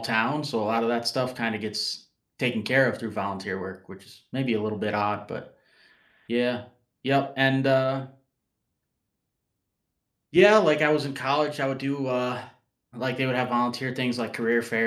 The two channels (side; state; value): both; identical; correlation 1.00